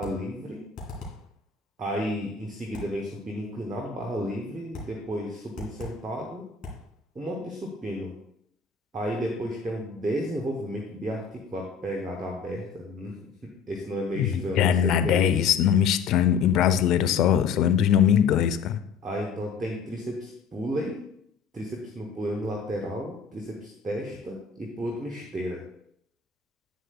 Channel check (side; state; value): right; quieter; 5.9 dB